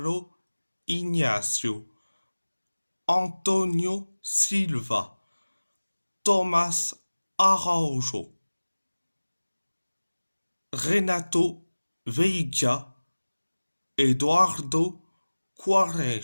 Ignacio, Antonio Silva, Thomas Araujo, Renato Veiga, Eduardo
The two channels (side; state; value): both; inverted; correlation -1.00